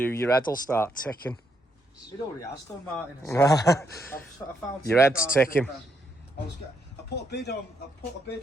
head will start ticking. It already has done, Martin. I found your head's ticking. I put a bid on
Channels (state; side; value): normal; both; correlation 0.77